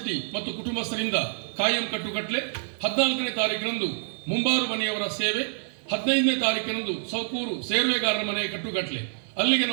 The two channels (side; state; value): left; silent; digital silence